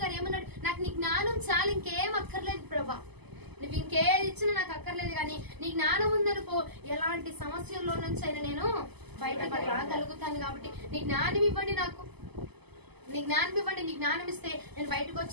గారు ఏమన్నాడు, నాకు నీ జ్ఞానం చాలు, ఇంకేం అక్కర్లేదు ప్రభా, నువ్వు ఇంకేది ఇచ్చినా నాకు అక్కర్లేదు, కానీ నీ జ్ఞానం ఉందనుకో ఎలాంటి సమస్యల్లో నుంచి అయినా నేను బయటకు రాగలుగుతాను. కాబట్టి నీ జ్ఞానం ఇవ్వండి, నాకు నీ జ్ఞానం ఇవ్వండి. నీ జ్ఞానం ఇస్తే నేను బయటకు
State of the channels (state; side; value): late; left; 0.99 ms